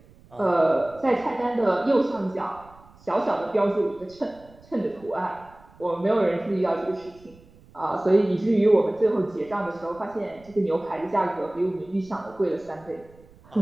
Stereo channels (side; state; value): right; noise; rumble, 26 dB below the sound